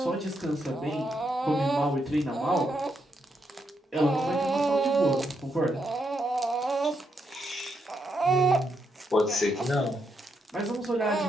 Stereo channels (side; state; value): both; normal; correlation 0.80